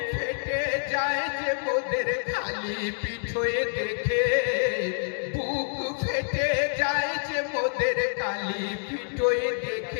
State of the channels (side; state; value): right; silent; digital silence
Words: ফেটে যায় যে মোদের খালি পিঠে দেখে বুক ফেটে যায় যে মোদের কালি পিঠে